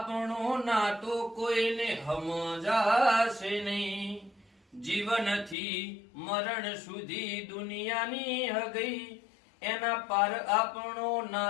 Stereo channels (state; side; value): drops out; right; at 5.6 s